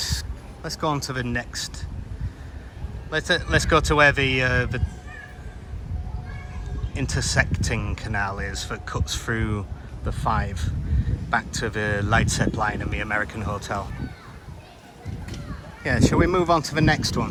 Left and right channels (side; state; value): both; identical; correlation 1.00